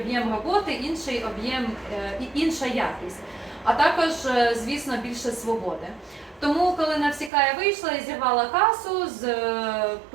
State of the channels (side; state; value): left; drops out; at 7.3 s